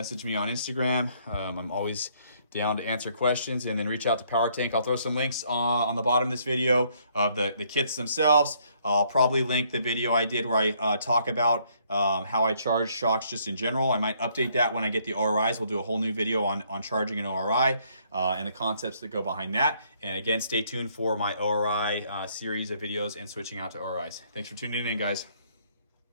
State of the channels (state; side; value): inverted; both; correlation -0.67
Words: me on Instagram. I'm always down to answer questions, and then reach out to POWERTANK. I'll throw some links on the bottom of this video of the kits themselves. I'll probably link the video I did where I talk about how I charge shocks just in general. I might update that when I get the ORIs. We'll do a whole new video on charging an ORI and the concepts that go behind that. And again, stay tuned for my ORI series of videos and switching out to ORIs. Thanks for tuning in, guys.